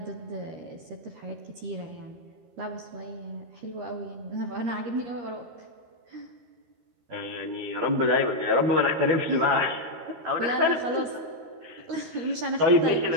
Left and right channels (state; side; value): late; left; 13 ms